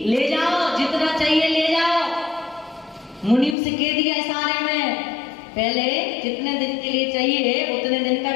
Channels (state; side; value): drops out; right; at 3.6 s